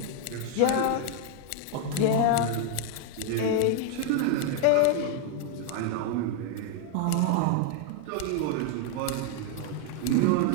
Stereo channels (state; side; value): different; both; correlation 0.01